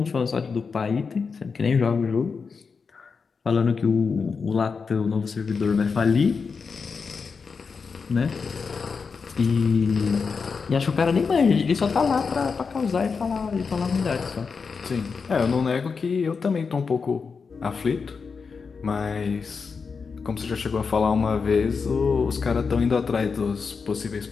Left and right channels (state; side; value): quieter; right; 5.3 dB